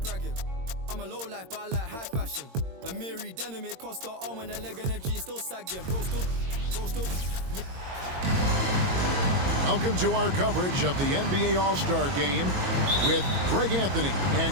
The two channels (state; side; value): late; left; 22 ms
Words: bragging. I'm a low life, but I like high fashion. A Miri denim, it cost her arm and a leg and a G still sagging. Bro still. Welcome to our coverage of the NBA All-Star Game with Greg Anthony